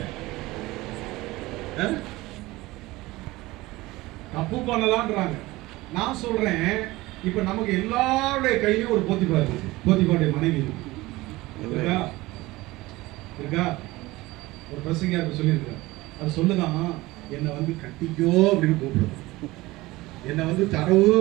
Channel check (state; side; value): quieter; left; 19.7 dB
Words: தப்பு பண்ணலான்றாங்க. நான் சொல்றேன், இப்ப நமக்கு எல்லாருடைய கையிலும் ஒரு போத்திபா இருக்கு. போத்திபாவுடைய மனைவி இருக்கா? ஒரு பிரசங்கியார் சொல்லியிருக்காரு. அது சொல்லுதான், என்னை வந்து கட்டிக்கோ அப்படின்னு கூப்பிடுவோம், என்னை வந்து தரவு